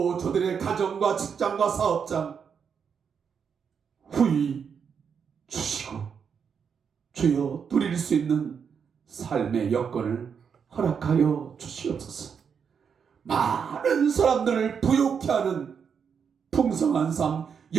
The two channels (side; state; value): left; quieter; 6.8 dB